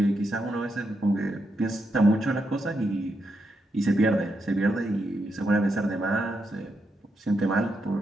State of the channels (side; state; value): both; normal; correlation 0.82